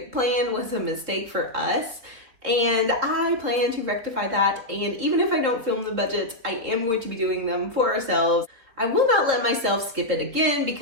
plan was a mistake for us. And I plan to rectify that. And even if I don't film the budgets, I am going to be doing them for ourselves. I will not let myself skip it again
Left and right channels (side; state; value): left; late; 4.1 ms